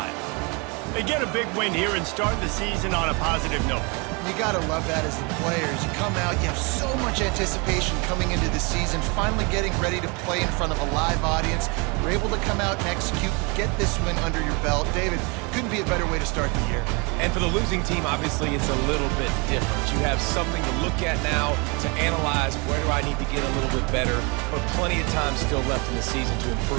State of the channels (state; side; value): quieter; left; 30.2 dB